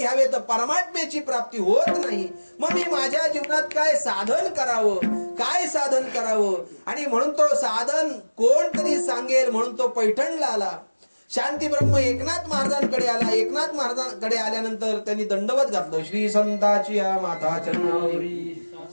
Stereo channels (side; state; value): both; inverted; correlation -1.00